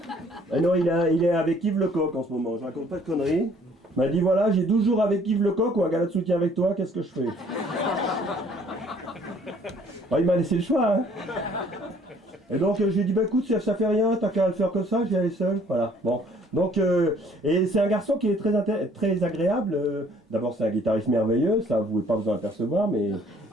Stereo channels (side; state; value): both; normal; correlation 0.59